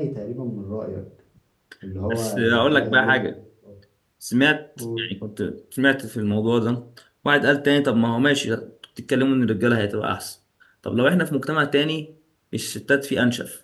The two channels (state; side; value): identical; both; correlation 1.00